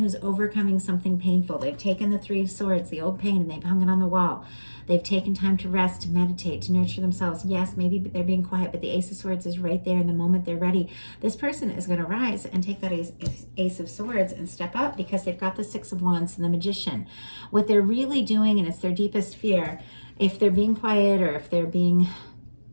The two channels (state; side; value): inverted; both; correlation -1.00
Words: overcoming something painful. They've taken the Three of Swords, the old pain, and they've hung it on the wall. They've taken time to rest, to meditate, to nurture themselves. Yes, maybe they're being quiet, but the Ace of Swords is right there. In the moment they're ready, this person is going to rise and take that Ace of Swords and step up, because they've got the Six of Wands and the Magician. What they're really doing, and it's their deepest fear, if they're being quiet or if they're being